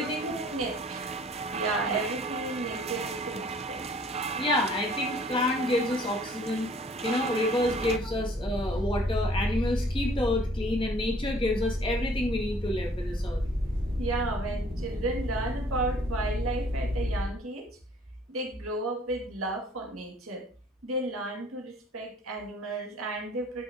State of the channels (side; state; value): both; normal; correlation 0.56